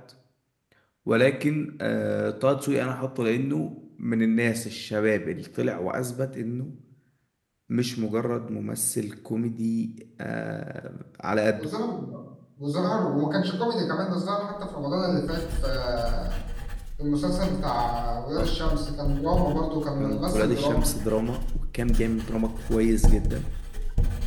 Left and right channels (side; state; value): both; identical; correlation 1.00